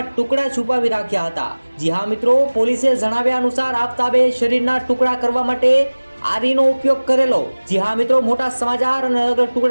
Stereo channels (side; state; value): both; inverted; correlation -1.00